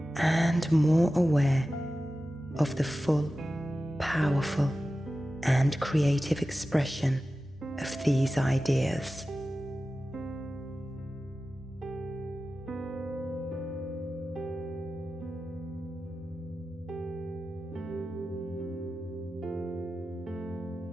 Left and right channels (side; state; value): both; normal; correlation 0.94